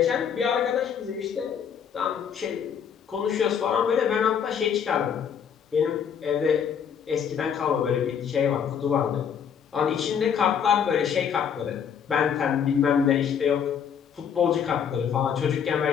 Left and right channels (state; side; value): quieter; right; 7.7 dB